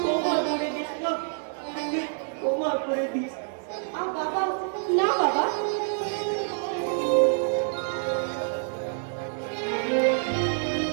বাবা, না বাবা,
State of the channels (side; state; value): left; silent; 60 dB below the other